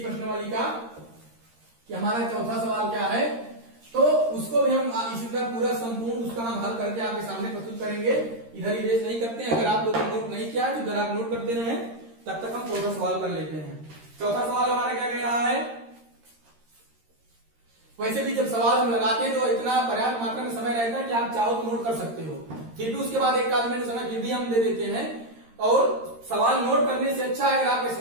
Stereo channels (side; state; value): left; late; 13 ms